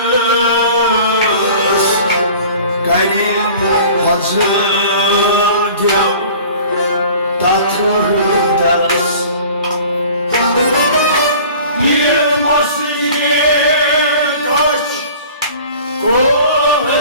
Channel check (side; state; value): both; inverted; correlation -0.45